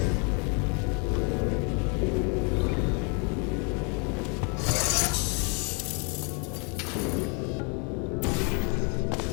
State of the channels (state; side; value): quieter; right; 35.5 dB